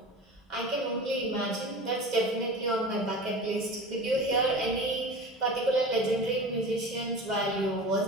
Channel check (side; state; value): both; normal; correlation 0.34